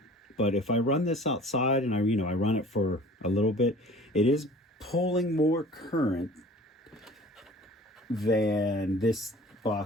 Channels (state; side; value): normal; both; correlation 0.46